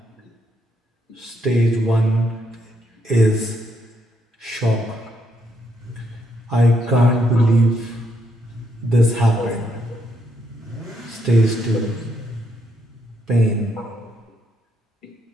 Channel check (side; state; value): both; normal; correlation 0.76